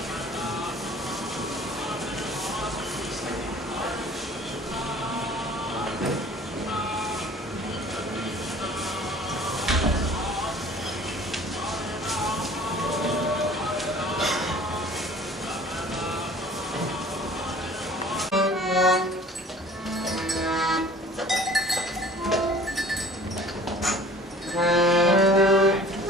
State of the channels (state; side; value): normal; both; correlation 0.48